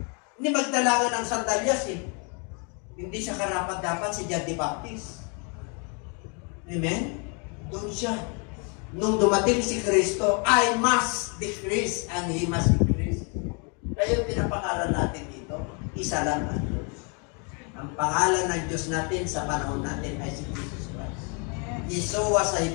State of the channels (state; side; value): quieter; right; 35.9 dB